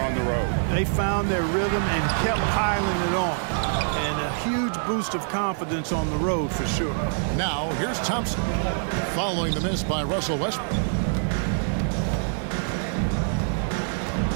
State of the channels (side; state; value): left; silent; digital silence